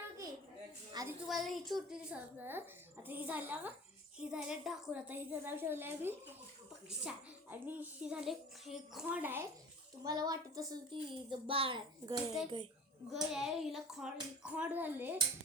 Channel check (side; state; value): both; normal; correlation 0.40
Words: की. आधी तुम्हाला ही छोटी दिसत असेल. आता ही झाल्या का, ही झाल्या ढाकून. आता ही नाव ठेवलं आहे मी पक्षा. आणि ही झाले हे खोंड आहे. तुम्हाला वाटत असेल ती बाळ आहे. गय आहे. हिला खोंड झाले.